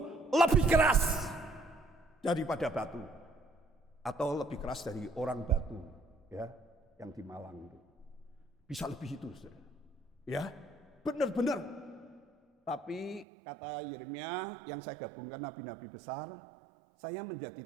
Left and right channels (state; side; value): drops out; left; at 13.2 s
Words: lebih keras daripada batu, atau lebih keras dari orang batu, ya, yang di Malang itu. Bisa lebih itu, saudara. Ya, benar-benar. Tapi kata Yeremia yang saya gabungkan nabi-nabi besar, saya menjadi